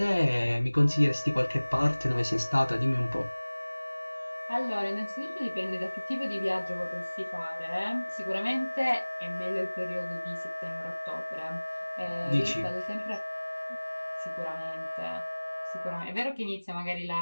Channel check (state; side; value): inverted; both; correlation -1.00